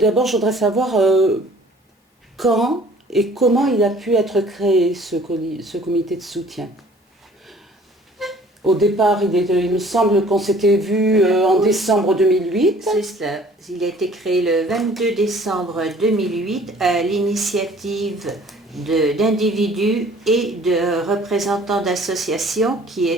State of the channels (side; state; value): both; normal; correlation 0.53